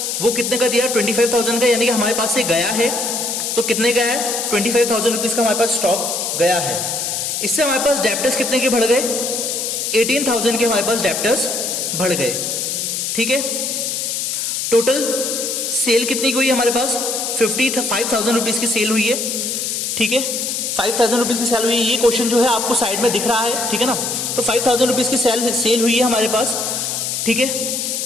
वो कितने का दिया 25,000 का, यानी कि हमारे पास से गया है, तो कितने का है 25,000 रुपीज का हमारे पास स्टॉक गया है। इससे हमारे पास डेप्टर्स कितने के बढ़ गए, 18,000 के हमारे पास डेप्टर्स बढ़ गए, ठीक है। टोटल सेल कितनी की हुई हमारे पास 55,000 रुपीज की सेल हुई है, ठीक है। 5,000 रुपीज की सेल हुई है, ये क्वेश्चन जो है आपको साइड में दिख रहा है, ठीक है ना। तो 5,000 रुपीज की सेल हुई है हमारे पास, ठीक है।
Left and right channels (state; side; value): noise; left; hiss, 2 dB below the sound